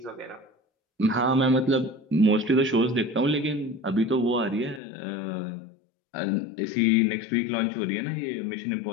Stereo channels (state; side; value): drops out; right; at 4.8 s